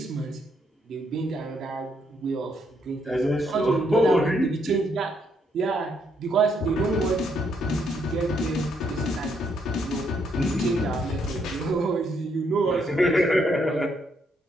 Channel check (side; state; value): both; normal; correlation 0.74